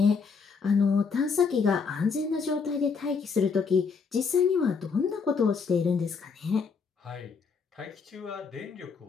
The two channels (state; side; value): quieter; right; 5.4 dB